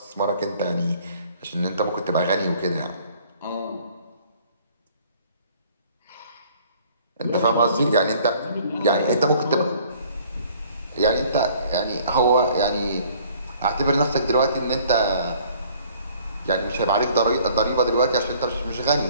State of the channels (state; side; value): inverted; both; correlation -0.56